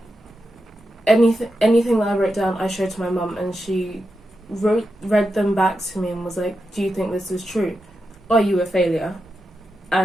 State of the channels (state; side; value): normal; both; correlation 0.88